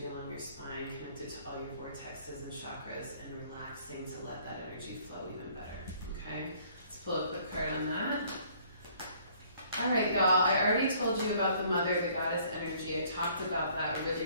along your spine, connected to all your vortexes and chakras, and relaxing to let that energy flow even better, okay? Let's pull a quick card on that. All right, y'all, I already told you about the mother, the goddess energy. I talked about that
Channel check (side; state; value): both; inverted; correlation -0.59